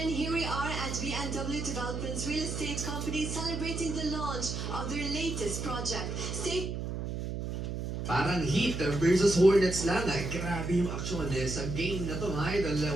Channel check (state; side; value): noise; right; hum, 4 dB below the sound